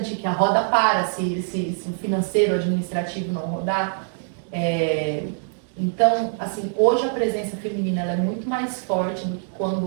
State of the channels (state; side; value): silent; left; digital silence